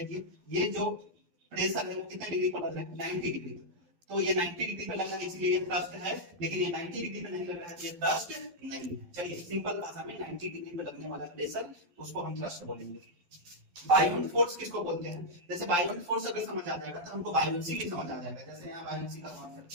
ये जो प्रेशर है वो कितने डिग्री पर लग रहा है, 90 डिग्री। तो ये 90 डिग्री पे लगा है इसलिए ये थ्रस्ट है, लेकिन ये 90 डिग्री पे नहीं लग रहा है तो ये थ्रस्ट नहीं है। चलिए सिंपल भाषा में 90 डिग्री पे लगने वाला प्रेशर उसको हम थ्रस्ट बोलेंगे। बायोन फोर्स किसको बोलते हैं, जैसे बायोन फोर्स अगर समझ आ जाएगा तो हमको बायोन्सी भी समझ आ जाएगा। जैसे यहाँ बायोन्सी का कॉन्सेप्ट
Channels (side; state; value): left; late; 12 ms